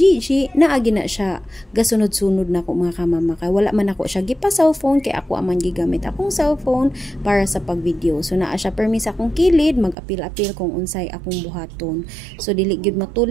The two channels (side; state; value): left; drops out; at 10.0 s